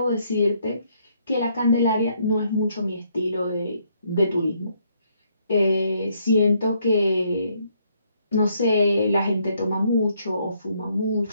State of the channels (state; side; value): inverted; both; correlation -0.71